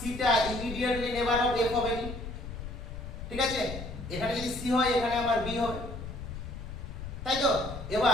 ইমিডিয়েটলি নেবার অফ এফ হবে না, ঠিক আছে? এখানে যদি সি হয় এখানে আমার বি হবে, তাই তো?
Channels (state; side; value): noise; left; rumble, 9 dB below the sound